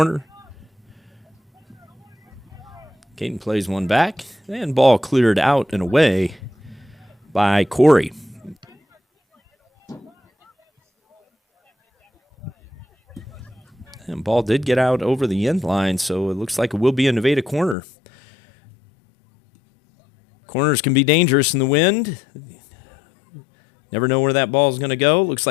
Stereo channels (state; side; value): drops out; right; at 17.8 s